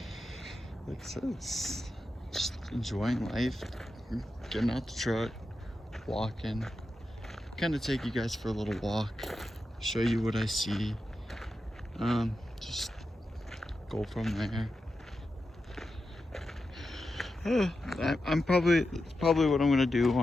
it's just enjoying life, getting out the truck, walking, kind of take you guys for a little walk, show you what I see, just go from there. I'm probably what I'm gonna do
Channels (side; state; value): both; normal; correlation 0.90